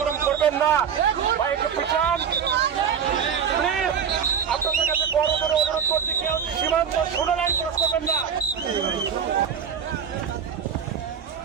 করবেন না। ভাই একটু পিছান প্লিজ। আপনাদের কাছে বড় করে অনুরোধ করছি, কেউ সীমান্ত 16 লাইন ক্রস করবেন না।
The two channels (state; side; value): quieter; left; 7.5 dB